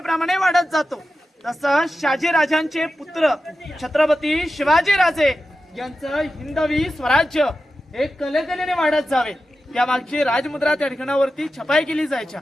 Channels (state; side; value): normal; both; correlation 0.92